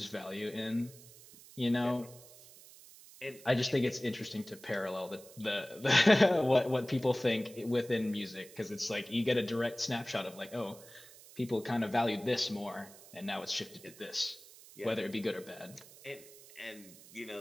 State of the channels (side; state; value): right; noise; hiss, 20 dB below the sound